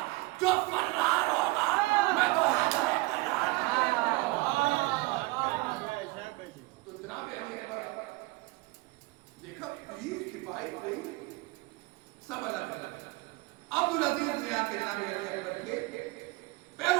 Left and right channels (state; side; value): quieter; left; 23.0 dB